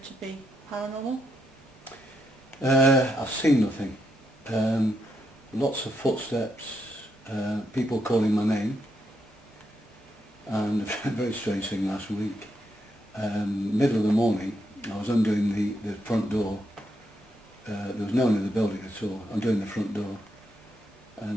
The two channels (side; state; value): both; normal; correlation 0.80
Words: be paranormal? I've seen nothing. Lots of footsteps, people calling my name, and a very strange thing last week. Middle of the morning, I was undoing the front door. There was no one in the building at all. Undoing the front door,